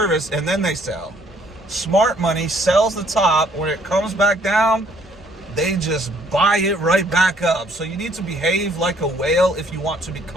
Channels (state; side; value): normal; both; correlation 0.63